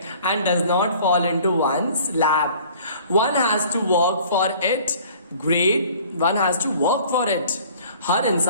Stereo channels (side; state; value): both; inverted; correlation -0.51